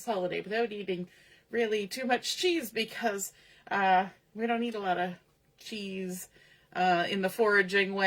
holiday without eating really too much cheese because we don't eat a lot of cheese in the foraging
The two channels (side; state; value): both; identical; correlation 1.00